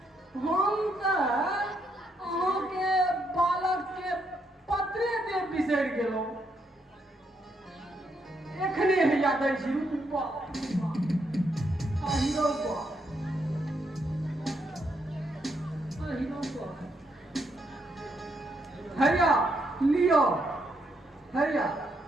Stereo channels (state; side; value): normal; both; correlation 0.77